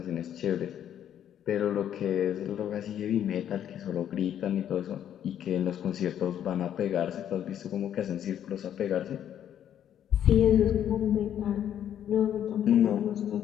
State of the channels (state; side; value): quieter; right; 10.1 dB